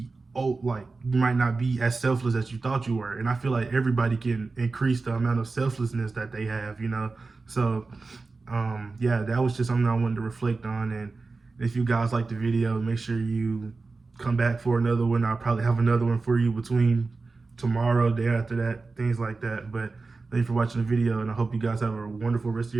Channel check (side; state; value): left; quieter; 3.9 dB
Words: like you might not be as selfless as you thought you were. And I feel like everybody can increase the amount of selflessness that they have. So yeah, that was just something I wanted to reflect on. And if you guys like the video, make sure you come back for another one. I'll probably have another one for you between tomorrow, day after that, things like that. But thank you for watching the video, and I hope you guys have a wonderful rest of